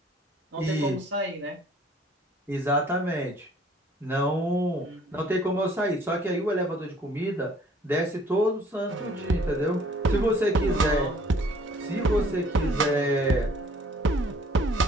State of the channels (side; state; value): both; normal; correlation 0.57